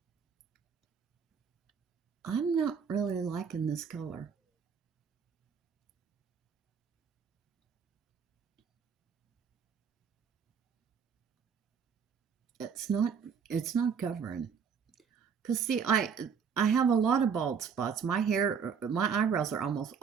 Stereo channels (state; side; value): quieter; left; 6.6 dB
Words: I'm not really liking this color. it's not covering. Because see, I have a lot of bald spots. My eyebrows are almost